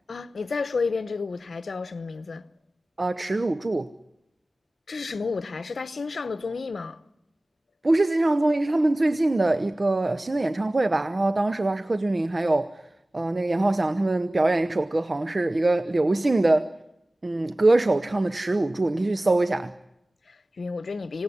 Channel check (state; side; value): normal; both; correlation 0.98